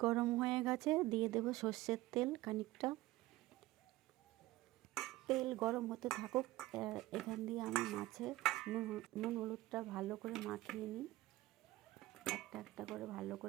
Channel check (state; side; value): quieter; left; 17.5 dB